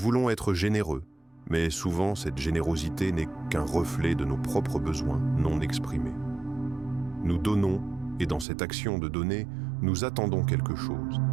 être généreux, mais souvent cette générosité n'est qu'un reflet de nos propres besoins non exprimés. Nous donnons, et dans cette action de donner, nous attendons quelque chose,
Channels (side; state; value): left; drops out; at 8.5 s